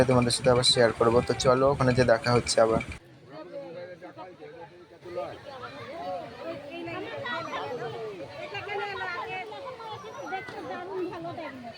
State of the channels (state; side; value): identical; both; correlation 1.00